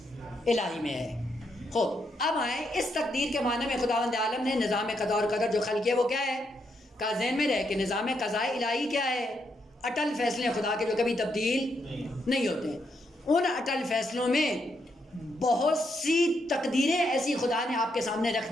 میں ہے. خوب اب آئیں اس تقدیر کے معنی میں خداوند عالم نے نظام قضا اور قدر جو خلق کیا وہ کیا ہے؟ کا ذہن میں رہے کہ نظام قضاء الہی کیا ہے؟ اٹل فیصلے خدا کے جو کبھی تبدیل نہیں ہوتے. ان اٹل فیصلوں میں بہت سی تقدیریں ایسی خدا نے آپ کے سامنے رکھ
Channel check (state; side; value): normal; both; correlation 0.79